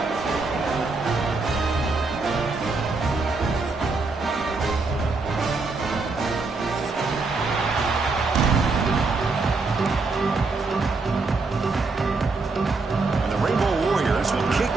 And the Rainbow Warriors will kick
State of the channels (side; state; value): left; quieter; 3.9 dB